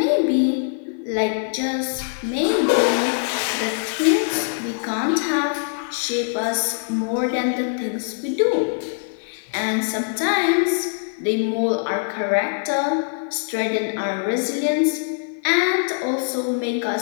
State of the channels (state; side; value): silent; right; 56 dB below the other